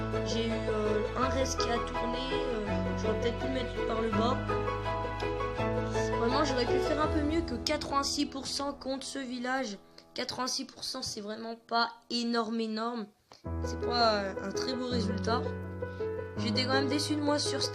J'ai eu un reste qui a tourné, j'aurais peut-être pu le mettre par le bas. Vraiment, j'aurais pu faire un peu mieux que 86% contre ce village. 86%, c'est vraiment pas énorme. C'est pas un très beau résultat. J'étais quand même déçu de moi sur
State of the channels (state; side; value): identical; both; correlation 1.00